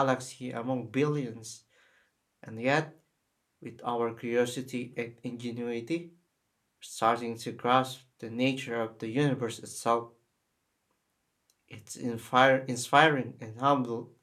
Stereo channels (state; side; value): identical; both; correlation 1.00